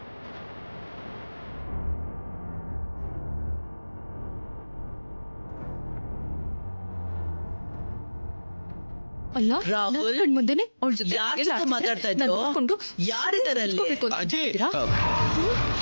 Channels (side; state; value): both; inverted; correlation -1.00